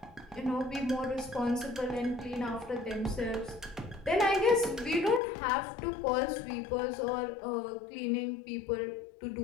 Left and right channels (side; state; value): right; drops out; at 5.2 s